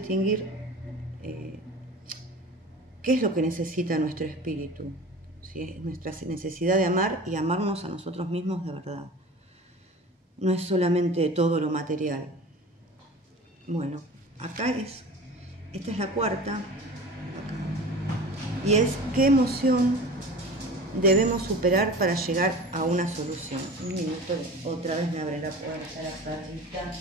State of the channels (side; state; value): both; normal; correlation 0.37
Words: qué es lo que necesita nuestro espíritu, ¿sí? Nuestra necesidad de amar y amarnos a nosotros mismos de verdad. No es solamente todo lo material. Bueno, esta es la cuarta. Y es qué emoción debemos superar para llegar a una solución. Un minuto, otra vez me abre la puerta la perrita.